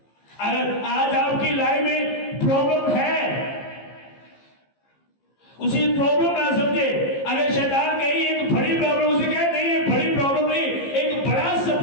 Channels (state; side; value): late; right; 15 ms